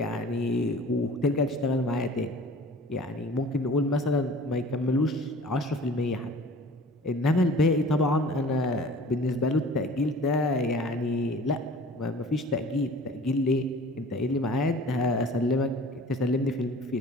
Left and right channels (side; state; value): both; normal; correlation 0.45